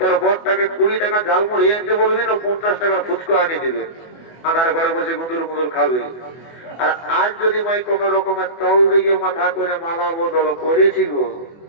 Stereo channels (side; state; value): right; late; 24 ms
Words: বরটাকে 20 টাকা ঝালমুড়ি আনতে বলবি না 50 টাকার ফুচকা আনিয়ে দিবে, আধার ঘরে বসে গুঁদুর গুঁদুর খাবে। আর আজ যদি ভাই কোন রকমের তল দিকে মাথা করে মালা বদল করেছি গো